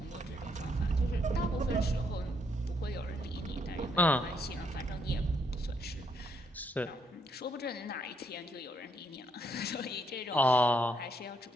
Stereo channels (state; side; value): normal; both; correlation 0.74